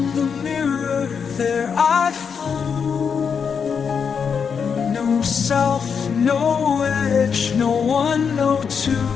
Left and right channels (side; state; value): right; quieter; 6.5 dB